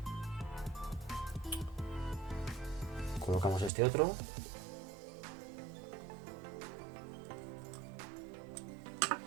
Colocamos este otro.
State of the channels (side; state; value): left; drops out; at 3.7 s